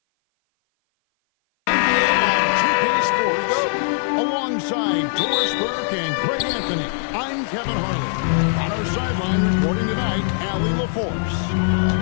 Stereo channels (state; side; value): silent; right; 56 dB below the other